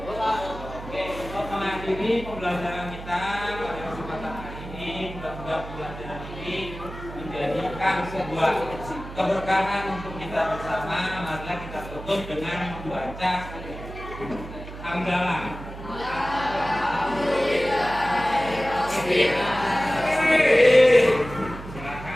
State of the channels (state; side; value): noise; right; hum, 12 dB below the sound